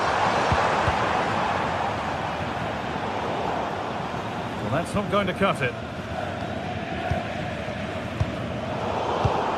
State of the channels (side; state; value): both; identical; correlation 1.00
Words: Well, that's not going to cut it.